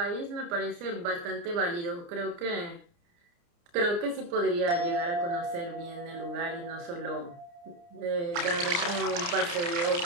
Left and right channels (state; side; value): late; left; 29 ms